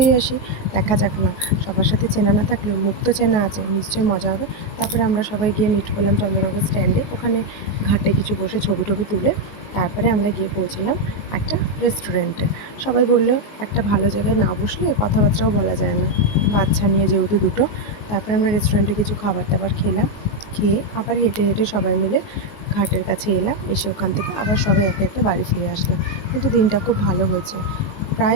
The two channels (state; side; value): late; right; 19 ms